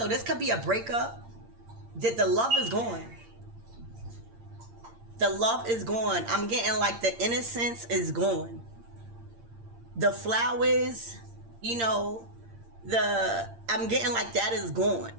this could be a breakup. The love is gone. The love is gone. I'm getting like the innocence is gone. The flowers, you know, I'm getting like that is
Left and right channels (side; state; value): left; late; 8.7 ms